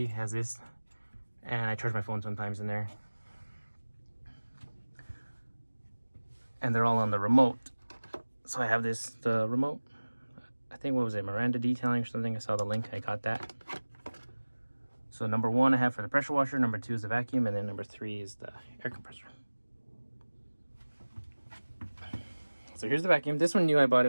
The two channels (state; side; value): inverted; both; correlation -1.00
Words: has this, and I charge my phone sometimes in there. And they're all on the remote. So I have the remote. I think, what was it, Miranda Detailing or something? I saw the link, I got that. So number 1 I have for the pressure washer, number 2 is the vacuum, and then number 3 is the air compressor. So here's the vacuum. This one knew I bought